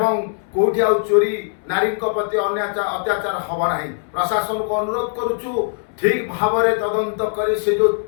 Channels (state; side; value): silent; right; 65 dB below the other